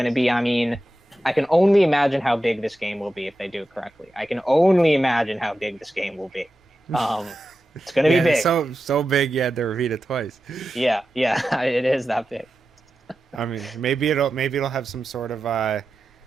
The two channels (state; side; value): normal; both; correlation 0.92